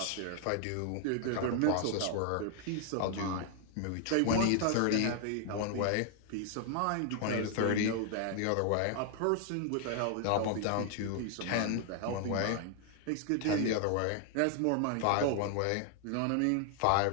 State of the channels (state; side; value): different; both; correlation 0.00